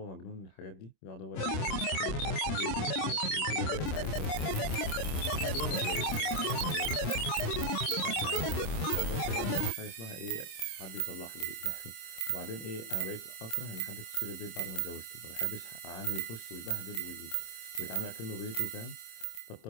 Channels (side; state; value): right; late; 26 ms